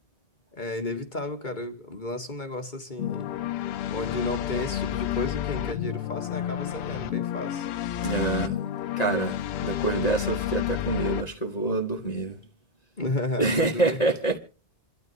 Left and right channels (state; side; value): late; right; 1.9 ms